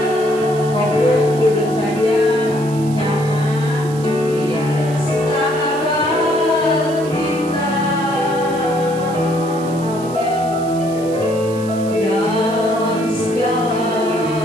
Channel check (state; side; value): noise; right; hiss, 18 dB below the sound